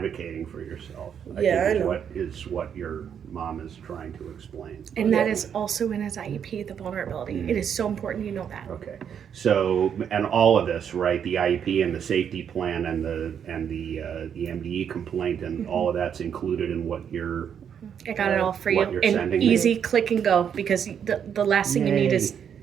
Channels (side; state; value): left; quieter; 8.1 dB